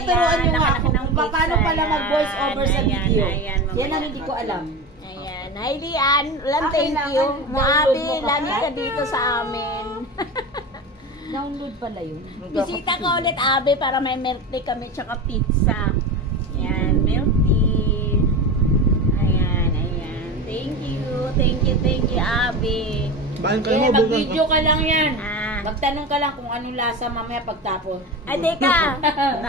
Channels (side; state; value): both; normal; correlation 0.26